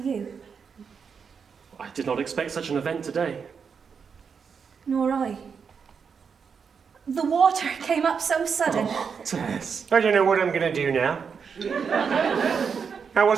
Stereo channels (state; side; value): quieter; left; 6.2 dB